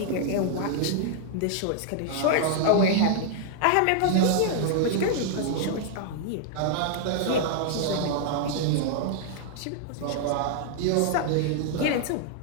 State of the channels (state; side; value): different; both; correlation -0.01